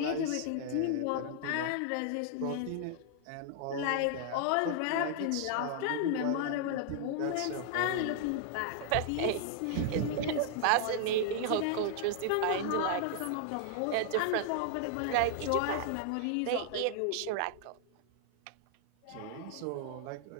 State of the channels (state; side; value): different; both; correlation 0.00